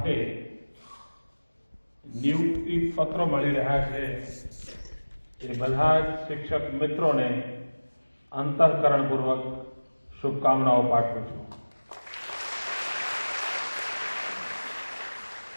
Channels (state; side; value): inverted; both; correlation -1.00